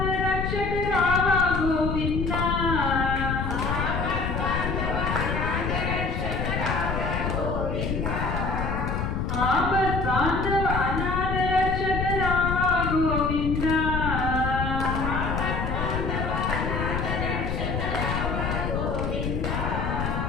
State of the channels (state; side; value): noise; left; rumble, 1 dB below the sound